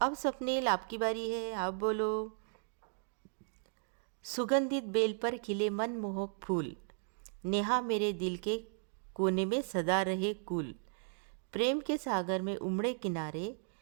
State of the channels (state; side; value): silent; left; digital silence